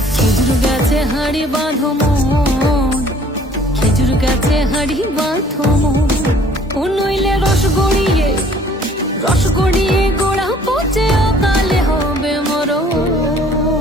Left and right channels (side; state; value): both; normal; correlation 0.56